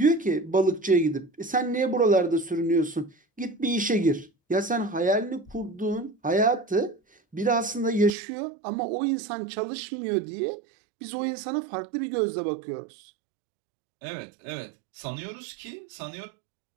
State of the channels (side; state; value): left; drops out; at 8.2 s